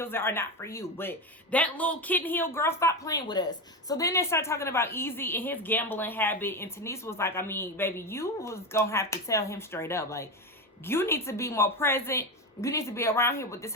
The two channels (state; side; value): normal; both; correlation 0.17